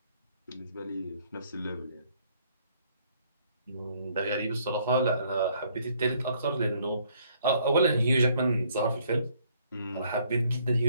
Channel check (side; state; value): both; inverted; correlation -0.65